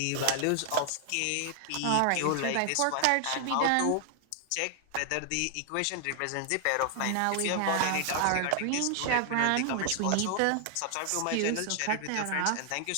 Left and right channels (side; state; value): both; different; correlation 0.00